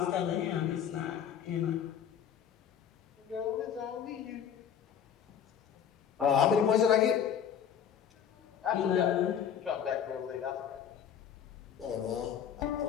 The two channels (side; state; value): right; quieter; 8.5 dB